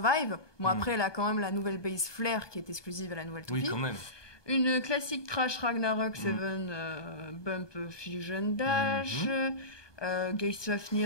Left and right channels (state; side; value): late; right; 1.2 ms